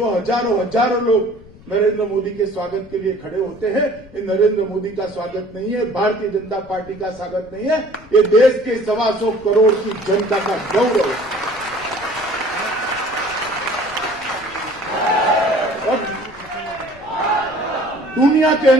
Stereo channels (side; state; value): left; noise; rumble, 22 dB below the sound